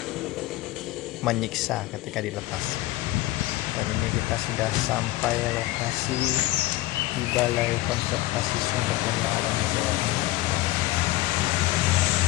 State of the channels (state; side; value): quieter; right; 17.6 dB